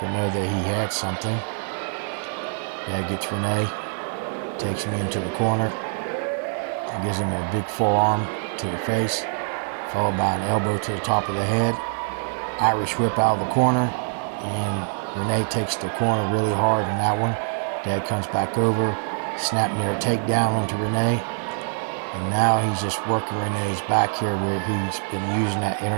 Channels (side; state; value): left; silent; 61 dB below the other